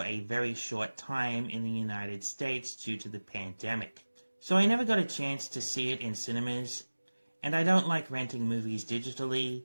a very short time in the United States due to the pandemic. So I never got a chance to see it in cinemas, and I don't like renting movies digitally,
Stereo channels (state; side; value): inverted; both; correlation -1.00